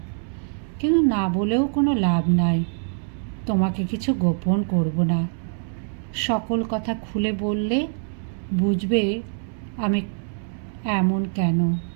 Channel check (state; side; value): silent; left; 63 dB below the other